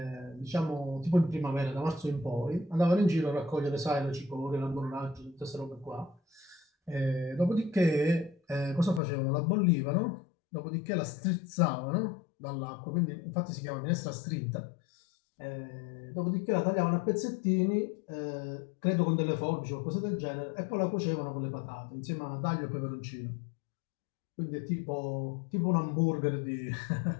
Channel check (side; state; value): right; drops out; at 9.0 s